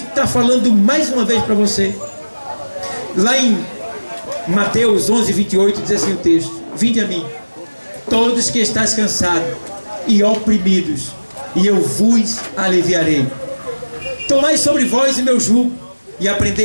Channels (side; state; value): both; inverted; correlation -1.00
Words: falando mais uma vez para você. Lá em Mateus 11:28 diz assim o texto: vinde a mim, todos que estáis cansados e oprimidos, e eu vos aliviarei. Tomai sobre vós o meu jugo e